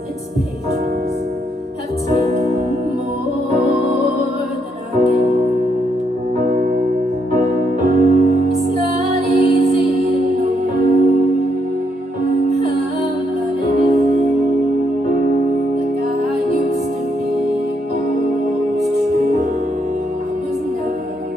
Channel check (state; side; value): normal; both; correlation 0.76